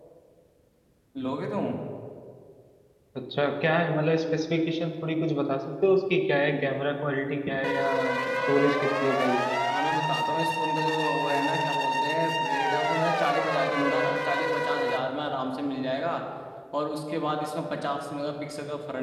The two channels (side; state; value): both; identical; correlation 1.00